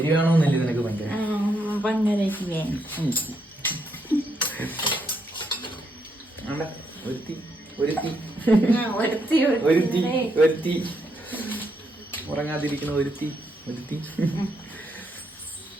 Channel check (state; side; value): normal; both; correlation 0.78